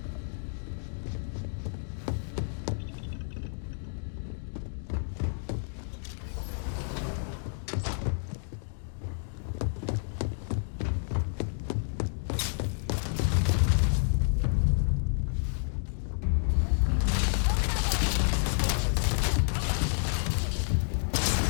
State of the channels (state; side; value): silent; right; digital silence